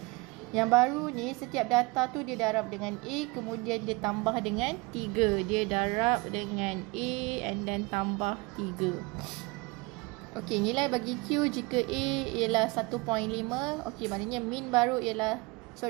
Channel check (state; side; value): quieter; left; 25.4 dB